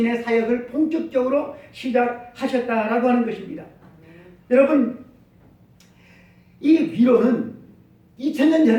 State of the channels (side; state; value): both; identical; correlation 1.00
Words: 사역을 본격적으로 시작하셨다라고 하는 것입니다. 여러분, 이 위로는 2000년